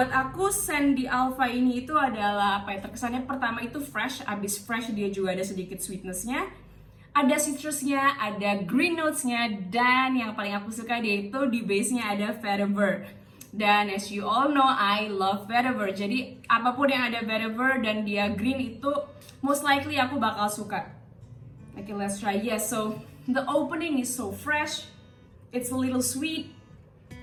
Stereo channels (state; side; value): identical; both; correlation 1.00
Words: aku scent di Alpha ini itu adalah terkesannya pertama itu fresh. Abis fresh dia juga ada sedikit sweetnessnya, ada citrusnya, ada green notesnya, dan yang paling aku suka dia itu di base-nya ada vetiver. Dan as you all know, I love vetiver. Jadi apapun yang ada vetiver dan dia green itu most likely aku bakal suka. Okay, let's try. Yes, so the opening is so fresh. It's a little sweet.